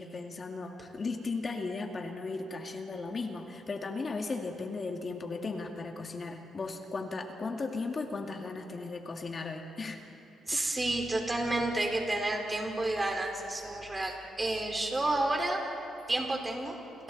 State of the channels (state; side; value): normal; both; correlation 0.87